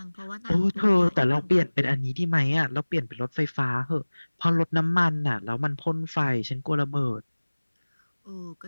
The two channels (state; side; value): inverted; both; correlation -1.00